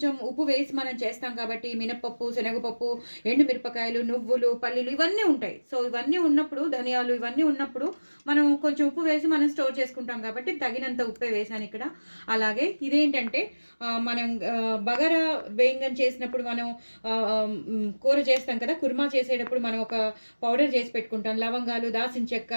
ఉప్పు వేసి మనం చేస్తాం కాబట్టి మినపప్పు, శనగపప్పు, ఎండు మిరపకాయలు, నువ్వులు, పల్లీలు ఇవన్నీ ఉంటాయి. సో ఇవన్నీ ఉన్నప్పుడు, ధనియాలు ఇవన్నీ ఉన్నప్పుడు మనం కొంచెం ఉప్పు వేసి మనం స్టోర్ చేసుకుంటాం కాబట్టి తగినంత ఉప్పే వేసాను ఇక్కడ. అలాగే ఇదేంటంటే మనం బగారా బేంగన్ చేసినప్పుడు మనం కూర చేస్తాం కదా, కుర్మా చేసేటప్పుడు మనం ఒక పౌడర్ చేసి పెట్టుకుంటాం. లవంగాలు, దాల్చిన చెక్క,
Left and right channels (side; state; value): both; inverted; correlation -1.00